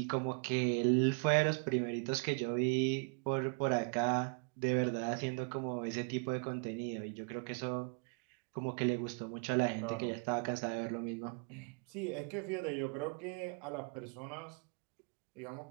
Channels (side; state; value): left; quieter; 37.7 dB